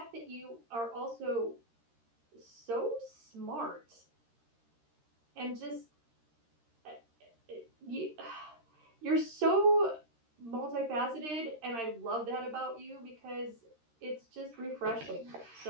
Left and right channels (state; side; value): late; left; 13 ms